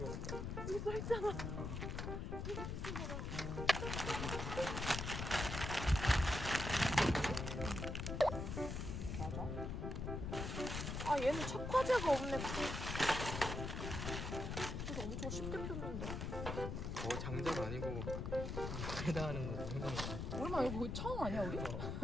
갈까? 여기 써있잖아. 이거 쓰지 마라. 얘는 착화제가 없네. 그래서 엄청 쉽게 폈는데. 장작 아니고 불에다 하는 거 생각나. 얼마 이거 거의 처음 아니야 우리?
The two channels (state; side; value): noise; left; rumble, 3 dB below the sound